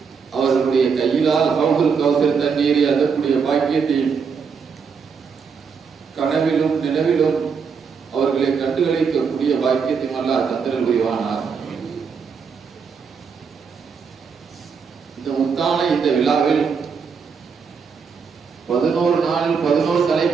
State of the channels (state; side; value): quieter; left; 5.9 dB